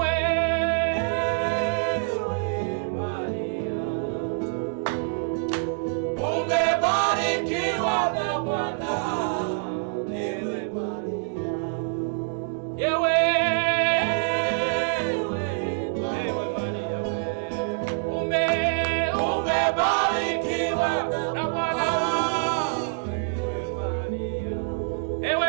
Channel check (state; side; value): silent; left; 61 dB below the other